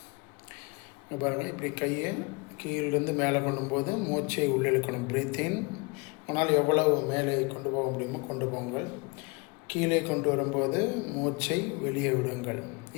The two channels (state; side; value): quieter; right; 28.7 dB